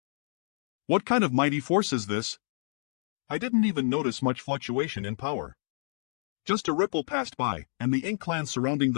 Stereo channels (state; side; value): silent; right; digital silence